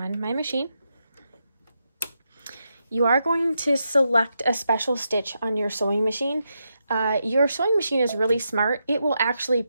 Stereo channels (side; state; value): both; inverted; correlation -0.84